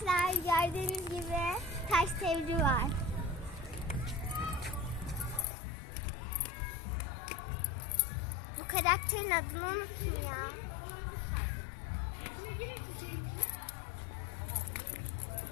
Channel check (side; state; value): right; drops out; at 5.5 s